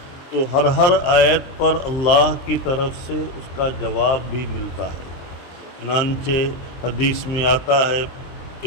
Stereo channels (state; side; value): late; right; 23 ms